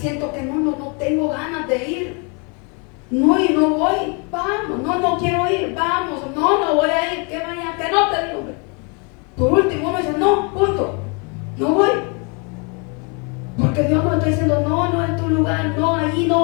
que no tengo ganas de ir. No, y no voy, vamos, no quiero ir, vamos, no voy a ir, que vaya, que no te digo. Por último uno dice, no, punto, no voy. Porque Dios nos está diciendo, no es tu lugar, no, allí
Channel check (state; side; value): quieter; right; 34.1 dB